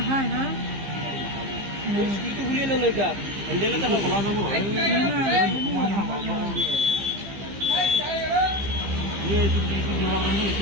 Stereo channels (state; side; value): late; left; 15 ms